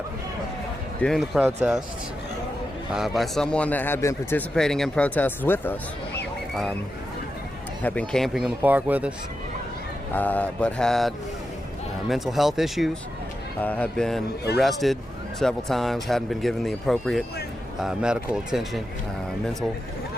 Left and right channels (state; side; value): normal; both; correlation 0.89